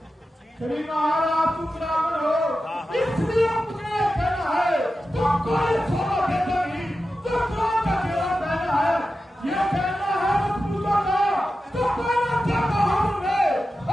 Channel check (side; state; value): both; normal; correlation 0.92